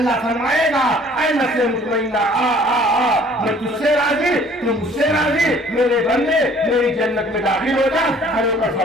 فرمائے گا اے نفس مطمئنہ آ آ آ، میں تجھ سے راضی، تو مجھ سے راضی، میرے بندے میری جنت میں داخل ہو جا، کھڑے ہو کر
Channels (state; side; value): normal; both; correlation 0.55